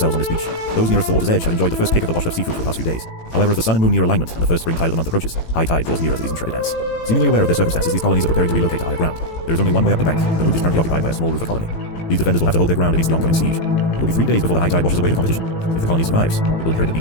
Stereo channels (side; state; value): right; late; 18 ms